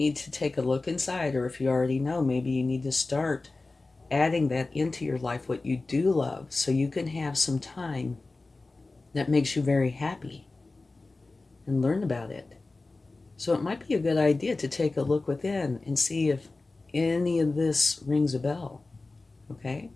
to take a look inside, or if you already know, maybe you need to start adding that into your life, what you do love, so you can have some time that makes you very happy and learn about it. So it might be a good idea to take a look within and see if any of this rings a bell. Okay?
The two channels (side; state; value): right; quieter; 3.4 dB